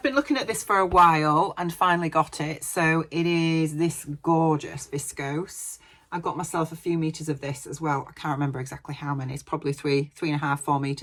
been looking at this for a while and finally got it. So it is this gorgeous viscose. I got myself a few meters of this as well. I can't remember exactly how many. It's probably 3.5, 4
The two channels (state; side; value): identical; both; correlation 1.00